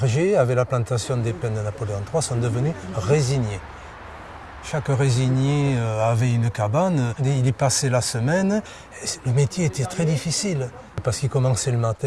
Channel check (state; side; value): identical; both; correlation 1.00